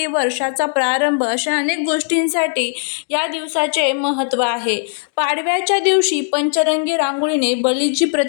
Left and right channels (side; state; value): right; silent; 58 dB below the other